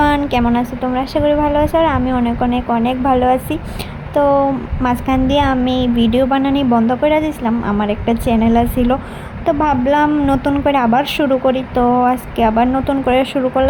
কেমন আছো তোমরা? আশা করি ভালো আছো। আর আমি অনেক অনেক অনেক ভালো আছি। তো মাঝখান দিয়ে আমি ভিডিও বানানি বন্ধ করে দিয়েছিলাম, আমার একটা চ্যানেল ছিল। তো ভাবলাম নতুন করে আবার শুরু করি। তো আজকে আবার নতুন করে শুরু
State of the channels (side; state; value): both; identical; correlation 1.00